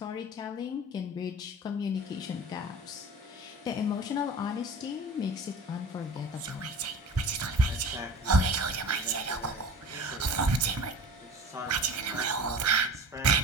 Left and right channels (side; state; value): both; normal; correlation 0.38